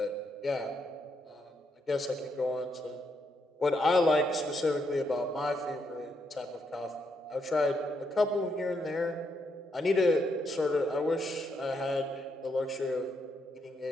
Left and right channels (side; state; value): both; normal; correlation 0.78